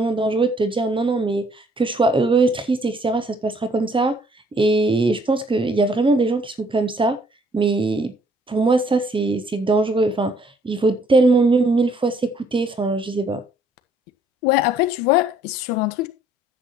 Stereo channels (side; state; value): both; normal; correlation 0.63